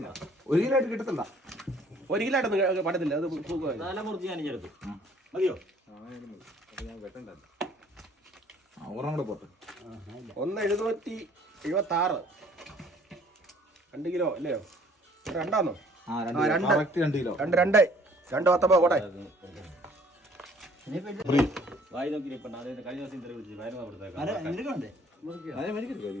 ആയിട്ട് കിട്ടത്തില്ല. 1 കിലോ ആയിട്ടൊന്നും പറ്റത്തില്ല. അത് മുറിച്ച് ഞാൻ എടുത്തു മതിയോ? ഒരെണ്ണം കൂടെ പോട്ടെ. 1,776 2 കിലോ അല്ലയോ? 2 2 കിലോ. 2 കോട്ടെ. വായി നോക്കി കഴിഞ്ഞ ദിവസം ഇന്റർവ്യൂ വിളിച്ചു വയറുന്ന കൊടുത്തേക്കാം.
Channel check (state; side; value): normal; both; correlation 0.57